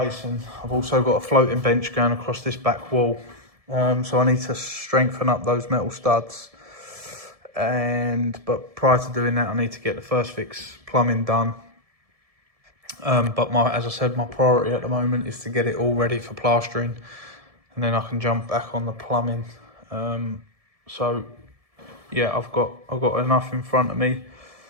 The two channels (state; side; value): late; left; 1.7 ms